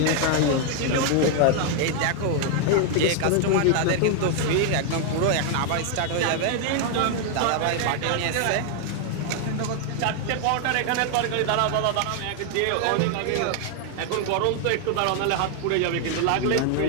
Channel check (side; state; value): both; different; correlation 0.00